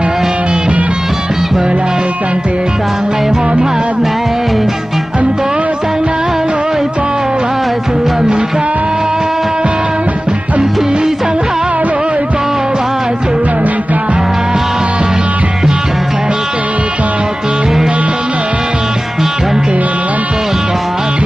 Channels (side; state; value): both; normal; correlation 0.97